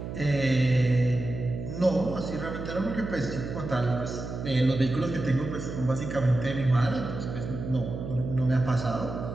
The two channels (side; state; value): right; noise; hum, 7 dB below the sound